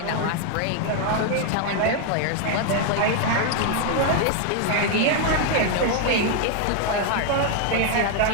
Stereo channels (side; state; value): both; different; correlation 0.00